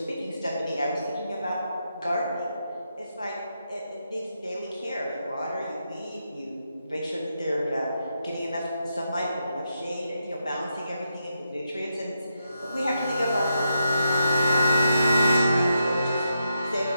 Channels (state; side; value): inverted; both; correlation -0.84